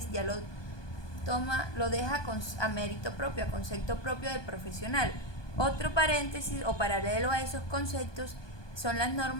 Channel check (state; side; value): late; right; 1.2 ms